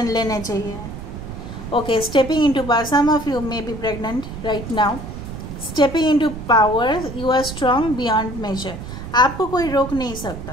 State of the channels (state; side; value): noise; right; rumble, 10 dB below the sound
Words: लेना चाहिए। Okay, stepping into power. Some of you may be pregnant right now. Stepping into power, you are strong beyond measure. आपको कोई रोक नहीं